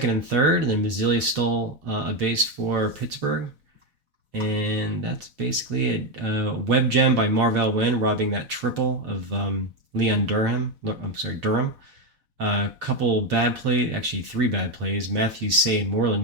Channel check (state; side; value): late; left; 4.0 ms